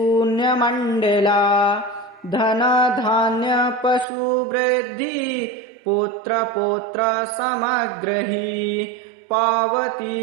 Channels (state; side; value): drops out; left; at 4.0 s